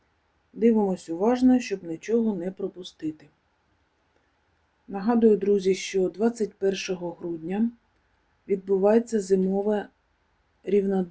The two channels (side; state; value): both; identical; correlation 1.00